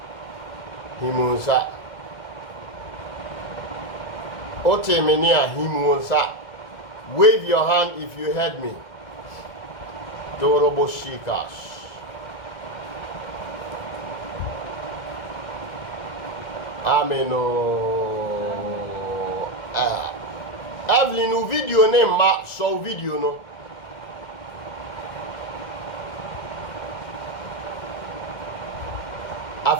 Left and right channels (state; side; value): late; right; 1.6 ms